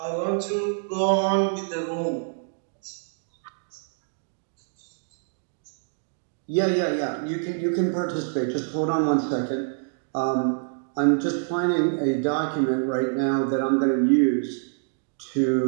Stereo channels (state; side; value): silent; left; digital silence